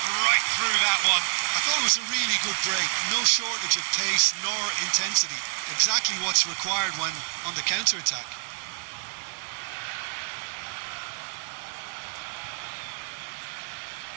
right through that one. I thought it was a really good break. No shortage of pace nor intensity. Exactly what's required when on the counter-attack.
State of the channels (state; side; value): silent; left; 56 dB below the other